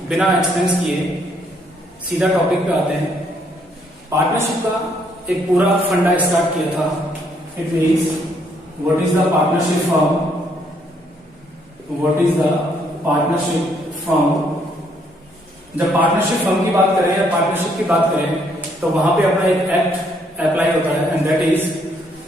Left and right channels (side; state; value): both; normal; correlation 0.70